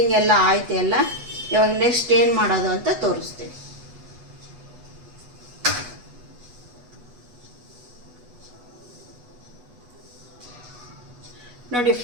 ಎಲ್ಲ ಆಯಿತು ಎಲ್ಲ. ಇವಾಗ ನೆಕ್ಸ್ಟ್ ಏನು ಮಾಡೋದು ಅಂತ ತೋರಿಸ್ತೀನಿ. ನೋಡಿ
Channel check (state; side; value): late; left; 8.2 ms